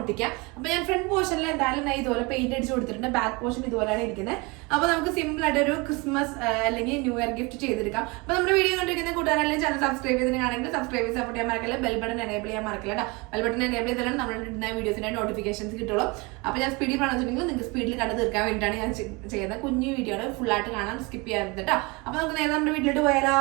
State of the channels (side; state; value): left; quieter; 26.9 dB